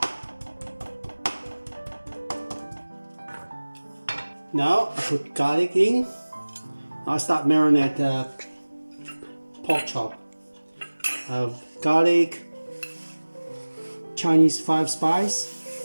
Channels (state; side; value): inverted; both; correlation -1.00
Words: Now I put garlic in. I'll start marinate the pork chop. Garlic, Chinese 5 spice,